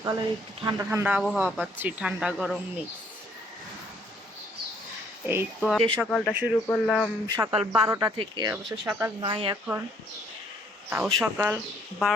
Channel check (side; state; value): both; normal; correlation 0.64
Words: একটু ঠান্ডা ঠান্ডা আবহাওয়া পাচ্ছি, ঠান্ডা গরম মিক্স। এই তো যে সকালটা শুরু করলাম সকাল 12টা থেকে, অবশ্য সকাল নয় এখন, তাও সকাল